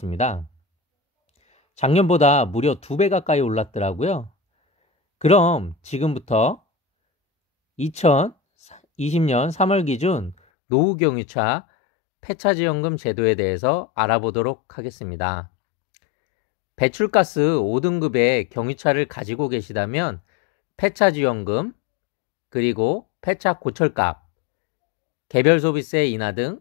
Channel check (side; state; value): right; drops out; at 10.4 s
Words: 작년보다 무려 2배 가까이 올랐더라고요. 그럼 지금부터 2020년 3월 기준 노후경유차 폐차지원금 제도에 대해서 알아보도록 하겠습니다. 배출가스 5등급의 경유차를 가지고 계시다면 폐차지원금, 그리고 폐차 고철값, 개별 소비세 인하 등